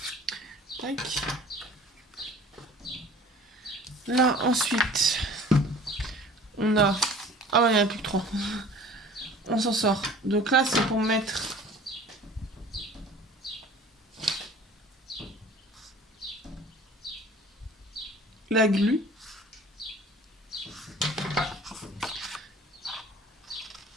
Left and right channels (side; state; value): both; normal; correlation 0.46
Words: Tac. Là, ensuite, on a... Ah ouais, il n'y en a plus que 3. On s'en sort. Donc là, c'est pour mettre... la glu.